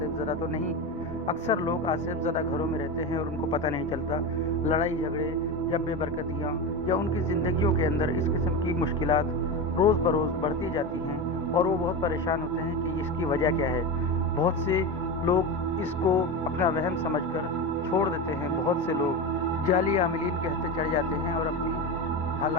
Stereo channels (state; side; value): noise; left; rumble, 28 dB below the sound